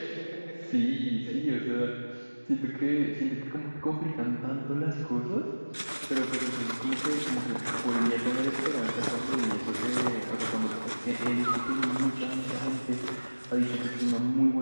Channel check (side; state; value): both; inverted; correlation -1.00